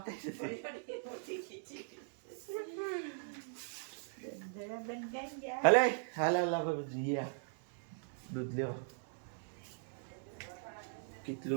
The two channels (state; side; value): silent; left; digital silence